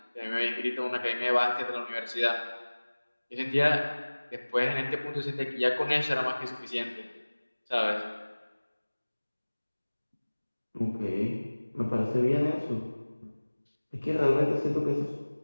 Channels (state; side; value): inverted; both; correlation -1.00